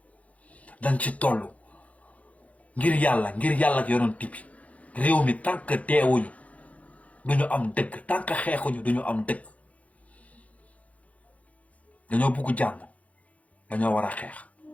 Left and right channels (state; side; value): late; right; 0.067 ms